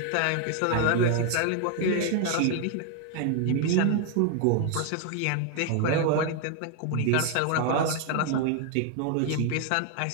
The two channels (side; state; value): both; different; correlation 0.01